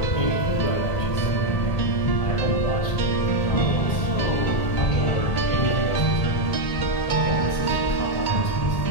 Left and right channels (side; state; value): right; late; 1.8 ms